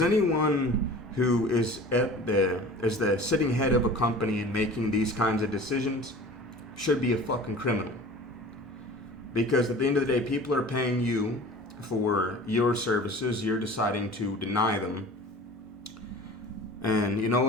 anyone who is the sitting head of a company and making these kinds of decisions should be a fucking criminal. Because at the end of the day, people are paying you for your services. You're deciding to deny them. And you know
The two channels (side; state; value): both; normal; correlation 0.41